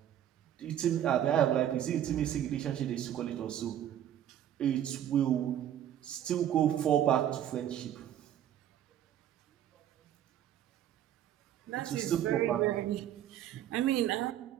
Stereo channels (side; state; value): left; quieter; 10.8 dB